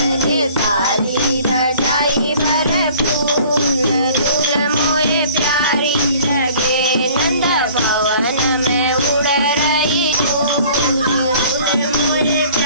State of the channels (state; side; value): inverted; both; correlation -0.50